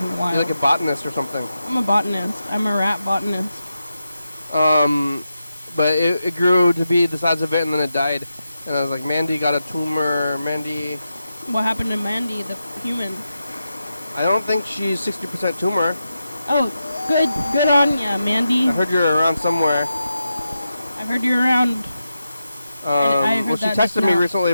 the wild. You're like a botanist or something. I'm a botanist. I'm a rat botanist. But it grew to be the size of it, and then it died. And I was like, Mandy got a tumor. Mandy. What happened to Mandy, the human? I don't think she's 60% tumor. Oh, Good on ya, Mandy. I heard you're around somewhere. I've heard you're around. I heard Well, she that just texted me now. recently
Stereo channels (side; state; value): both; inverted; correlation -0.89